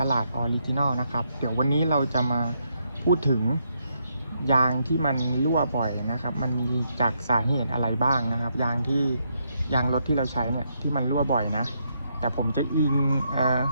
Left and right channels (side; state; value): both; inverted; correlation -0.77